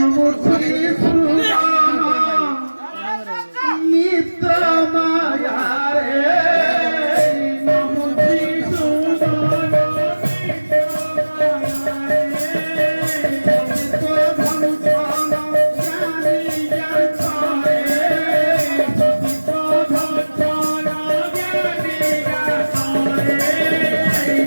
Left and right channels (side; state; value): both; inverted; correlation -1.00